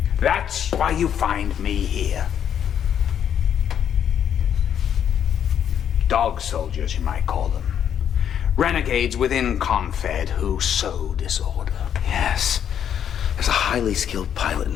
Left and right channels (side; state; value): right; quieter; 9.1 dB